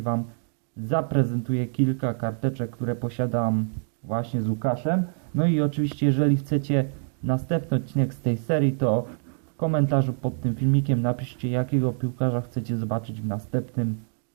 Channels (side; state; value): left; silent; 61 dB below the other